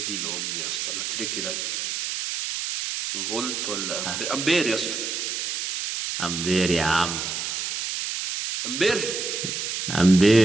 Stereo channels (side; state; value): right; noise; hiss, 3 dB below the sound